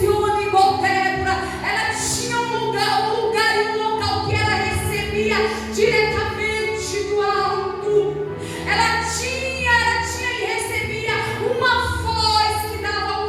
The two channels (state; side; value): identical; both; correlation 1.00